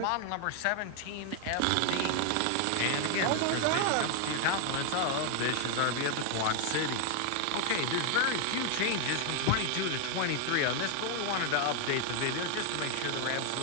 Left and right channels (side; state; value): both; different; correlation 0.00